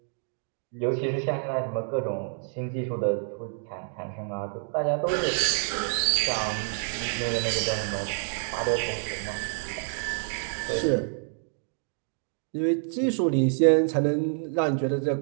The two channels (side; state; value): left; silent; digital silence